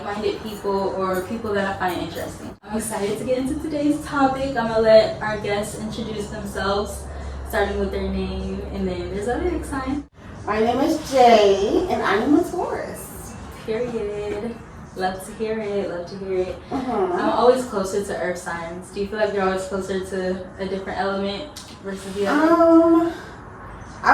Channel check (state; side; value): identical; both; correlation 1.00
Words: people or people that I find interesting. I'm excited to get into today's topic. I'm going to let our guests introduce themselves, starting with their name and then their zodiac sign. My name is Jay, and I'm a Taurus. Period. Love to hear it. I'm always closer to earth signs. Do you feel like you're always closer to a different element versus the other?